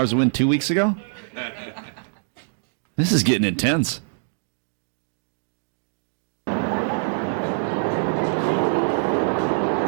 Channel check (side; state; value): left; silent; digital silence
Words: to win 2 weeks ago? This is getting intense.